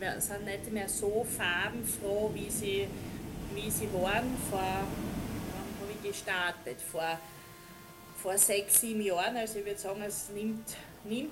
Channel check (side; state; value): both; identical; correlation 1.00